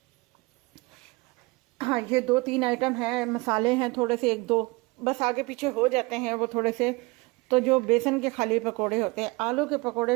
हाँ ये 2-3 आइटम है, मसाले हैं थोड़े से, एक दो बस आगे पीछे हो जाते हैं वो थोड़े से। तो जो बेसन के खाली पकोड़े होते हैं, आलू के पकोड़े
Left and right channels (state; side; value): quieter; left; 24.6 dB